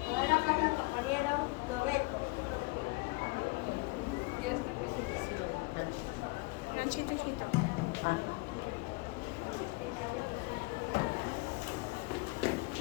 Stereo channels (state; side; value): quieter; right; 25.9 dB